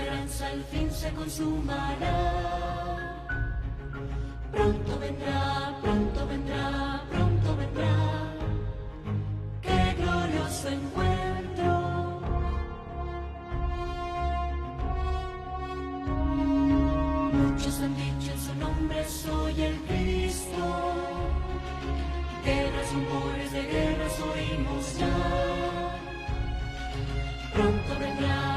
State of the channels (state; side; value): identical; both; correlation 1.00